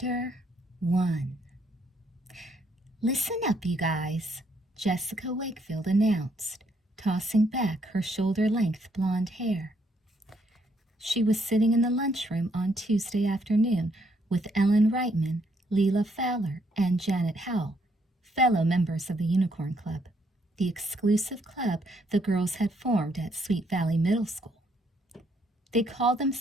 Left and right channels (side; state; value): both; normal; correlation 0.71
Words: 1. "Listen up, you guys," Jessica Wakefield announced, tossing back her shoulder-length blonde hair. She was sitting in the lunchroom on Tuesday afternoon with Ellen Reitman, Leela Fowler, and Janet Howell, fellow members of the Unicorn Club, the exclusive club the girls had formed at Sweet Valley Middle School. They called